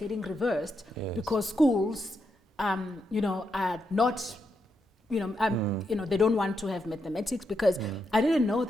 reversed because schools, you know, are not, you know, they don't want to have mathematics because I didn't know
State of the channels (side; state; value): both; normal; correlation 0.82